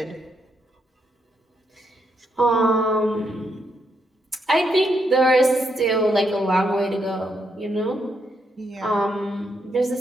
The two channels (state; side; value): normal; both; correlation 0.78